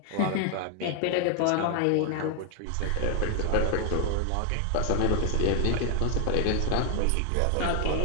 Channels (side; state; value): both; different; correlation 0.00